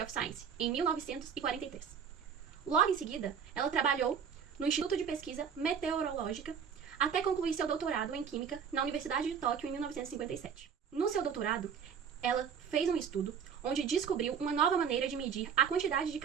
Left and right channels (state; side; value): quieter; left; 7.2 dB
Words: of Science, em 1943. Logo em seguida, ela trabalhou no Instituto de Pesquisa Meteorológica até concluir seu doutorado em Química na Universidade de Tóquio em 1957. No seu doutorado, ela fez um estudo onde descobriu uma nova maneira de medir a quantidade de